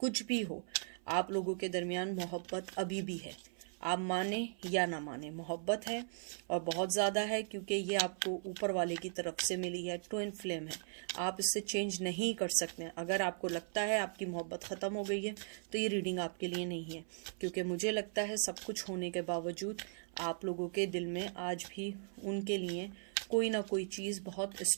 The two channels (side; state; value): left; silent; 52 dB below the other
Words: भी हो, आप लोगों के दरमियान मोहब्बत अभी भी है। आप माने या ना माने, मोहब्बत है और बहुत ज़्यादा है, क्योंकि ये आपको ऊपर वाले की तरफ से मिली है, ट्विन फ्लेम है। आप इससे चेंज नहीं कर सकते। अगर आपको लगता है आपकी मोहब्बत ख़त्म हो गई है तो ये रीडिंग आपके लिए नहीं है, क्योंकि मुझे लगता है सब कुछ होने के बावजूद आप लोगों के दिल में आज भी उनके लिए कोई ना कोई चीज़ बहुत